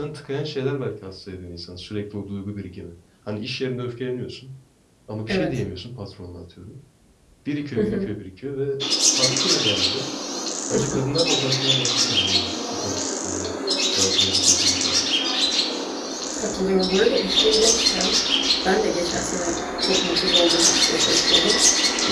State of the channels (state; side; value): identical; both; correlation 1.00